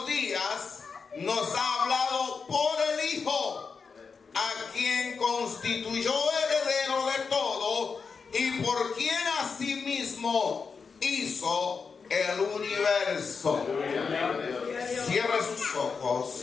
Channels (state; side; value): quieter; right; 5.3 dB